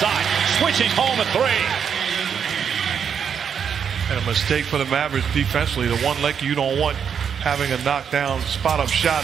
switching home at 3. And a mistake for the Mavericks defensively. The one Laker you don't want having a knockdown spot-up shot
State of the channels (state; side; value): quieter; left; 7.4 dB